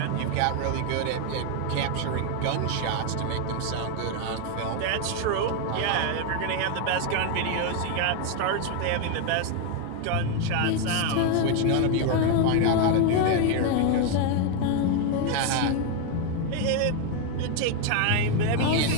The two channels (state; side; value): different; both; correlation 0.01